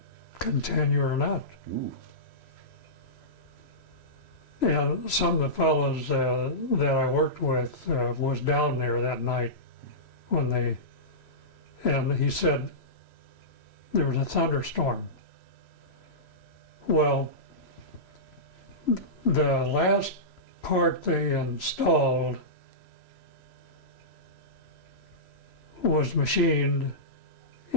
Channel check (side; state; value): right; late; 3.0 ms